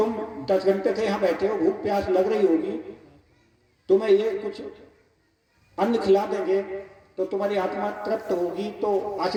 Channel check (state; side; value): identical; both; correlation 1.00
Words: 10 घंटे से यहाँ बैठे हो, भूख प्यास लग रही होगी, तुम्हें ये कुछ अन्न खिला देंगे तो तुम्हारी आत्मा तृप्त होगी, तो